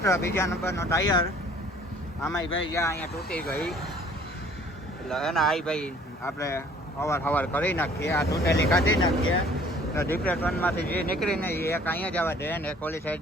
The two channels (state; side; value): normal; both; correlation 0.55